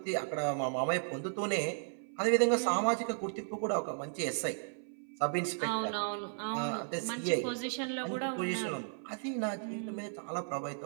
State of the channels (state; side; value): silent; left; 55 dB below the other